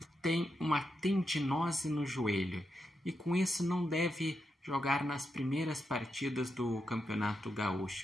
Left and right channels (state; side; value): normal; both; correlation 0.85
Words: tem uma tendinose no joelho e com isso não deve jogar nas primeiras partidas do Campeonato